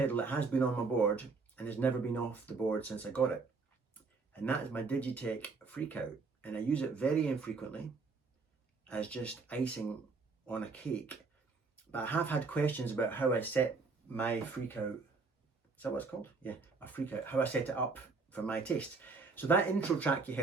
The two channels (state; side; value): quieter; left; 4.3 dB